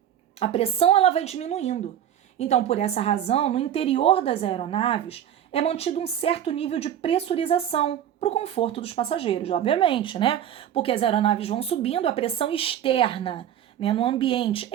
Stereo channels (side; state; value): left; quieter; 10.3 dB